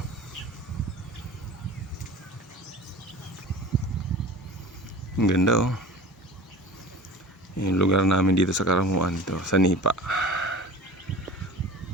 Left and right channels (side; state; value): both; normal; correlation 0.38